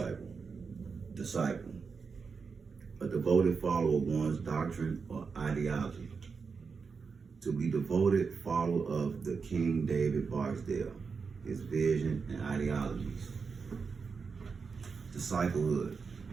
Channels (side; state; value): left; quieter; 5.3 dB